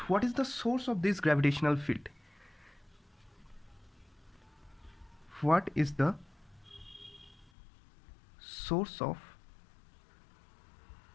what is the source of this gravitational field? What is the source of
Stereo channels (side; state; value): right; drops out; at 7.5 s